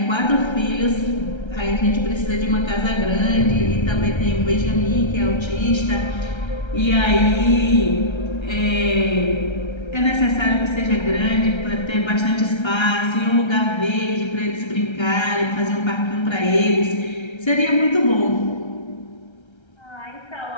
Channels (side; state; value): right; late; 1.3 ms